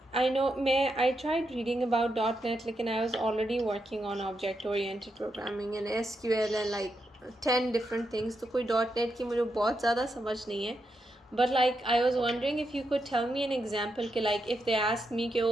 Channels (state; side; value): normal; both; correlation 0.84